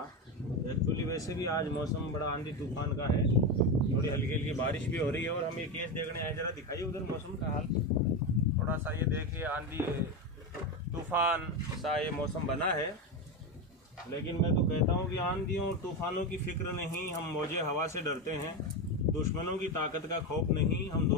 एक्चुअली वैसे भी आज मौसम बड़ा आंधी तूफान का है, थोड़ी हल्की हल्की बारिश भी हो रही है और हम ये केस देखने आए। जरा दिखाइए उधर मौसम का हाल, थोड़ा सा ये देखिए आंधी तूफान सा ये मौसम बना है। लेकिन मैं तो कहता हूँ कि आंधियों और तूफानों की फिक्र नहीं, हम मौजे हवा से डरते हैं। दुश्मनों की ताकत का खौफ नहीं, हम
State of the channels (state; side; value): normal; both; correlation 0.15